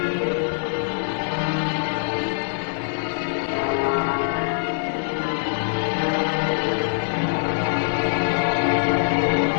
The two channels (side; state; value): right; silent; digital silence